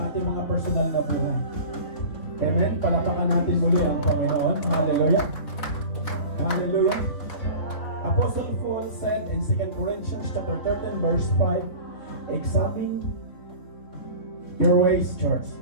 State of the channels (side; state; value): right; late; 3.8 ms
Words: ating mga personal na buhay. Amen? Palapakan natin muli ang Panginoon. Hallelujah. Hallelujah. Apostle Paul said in 2 Corinthians chapter 13 verse 5, examine your ways, church.